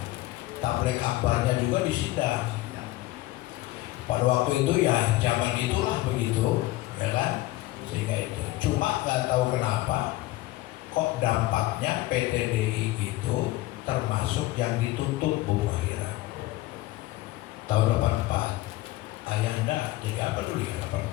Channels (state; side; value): quieter; right; 17.7 dB